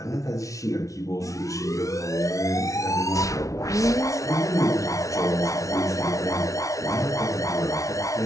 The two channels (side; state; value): right; late; 0.16 ms